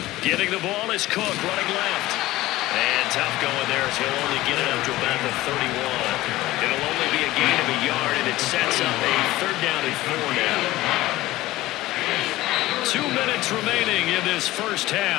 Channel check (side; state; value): right; quieter; 17.2 dB